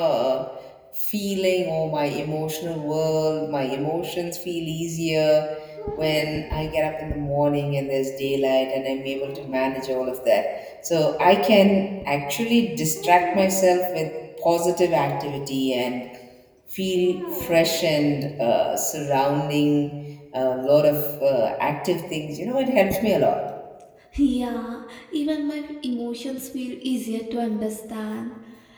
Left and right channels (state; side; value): identical; both; correlation 1.00